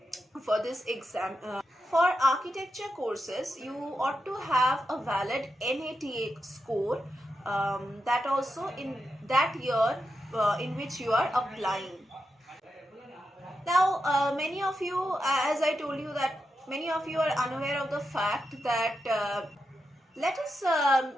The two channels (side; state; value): both; normal; correlation 0.87